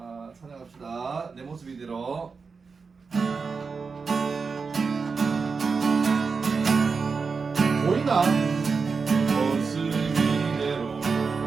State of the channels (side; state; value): left; quieter; 5.0 dB